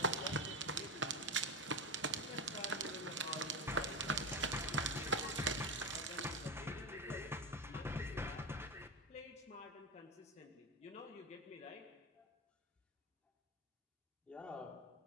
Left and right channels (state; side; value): normal; both; correlation 0.17